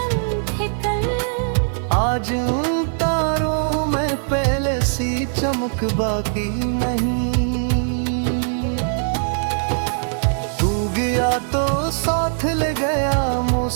थे कल, आज उन तारों में पहले सी चमक बाकी नहीं। तू गया तो साथ ले गया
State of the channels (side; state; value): left; silent; digital silence